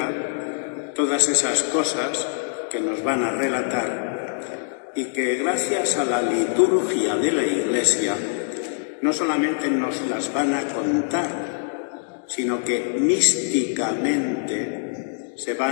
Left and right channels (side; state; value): right; silent; digital silence